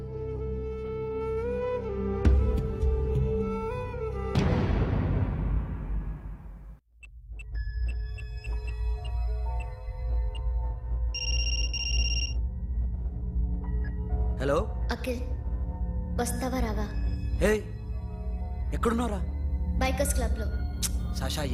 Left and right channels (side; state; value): both; identical; correlation 1.00